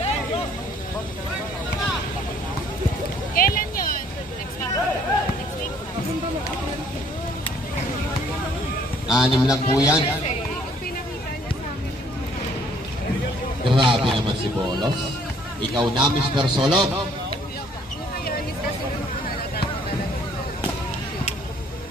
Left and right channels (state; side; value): normal; both; correlation 0.62